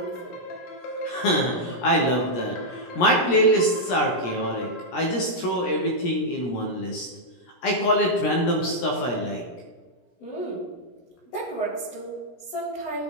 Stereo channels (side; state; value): right; late; 17 ms